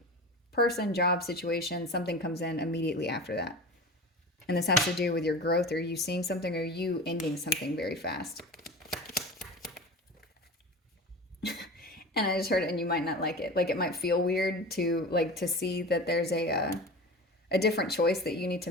person, job, situation, something comes in immediately after that. And this has to do with your growth, or you seeing something, or you ending something very fast. And I just heard it, and you might not like it. Like, it might feel weird to see that there's a different choice that you need to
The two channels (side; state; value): both; normal; correlation 0.32